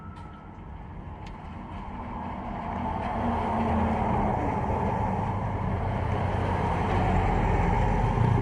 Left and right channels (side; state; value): both; identical; correlation 1.00